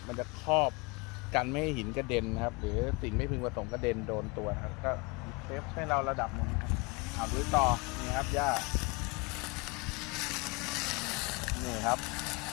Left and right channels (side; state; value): right; quieter; 27.6 dB